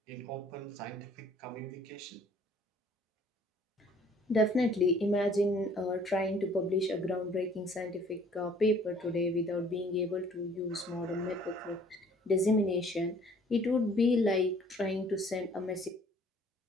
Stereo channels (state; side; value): normal; both; correlation 0.56